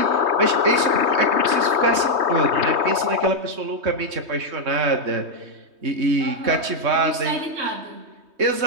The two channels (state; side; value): late; left; 3.2 ms